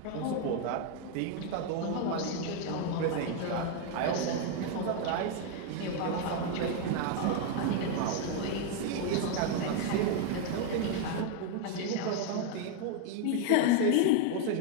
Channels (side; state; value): both; different; correlation 0.01